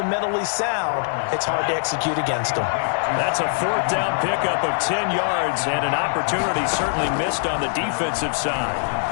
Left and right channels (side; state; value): right; silent; digital silence